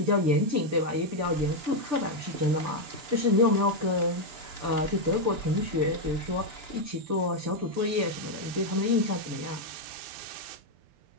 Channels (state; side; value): late; left; 6.8 ms